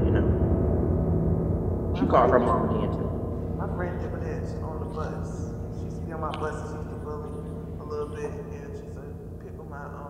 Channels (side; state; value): both; identical; correlation 1.00